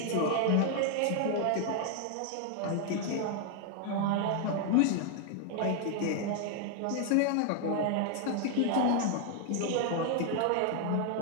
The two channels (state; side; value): different; both; correlation 0.00